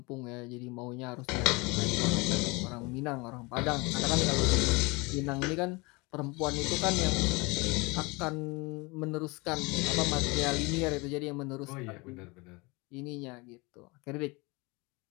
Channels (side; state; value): right; quieter; 26.1 dB